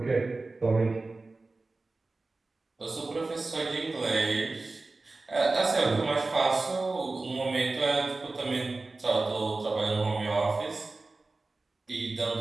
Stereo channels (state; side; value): quieter; left; 3.4 dB